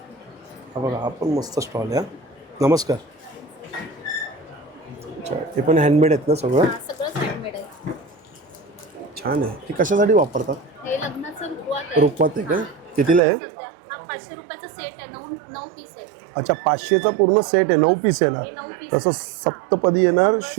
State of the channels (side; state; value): left; drops out; at 13.2 s